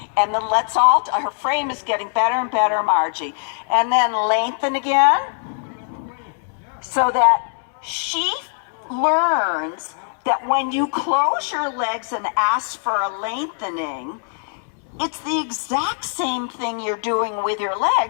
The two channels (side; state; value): right; silent; 65 dB below the other